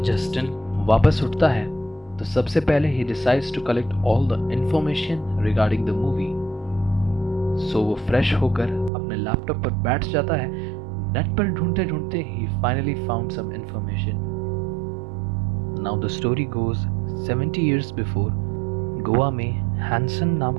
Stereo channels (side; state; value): left; drops out; at 8.9 s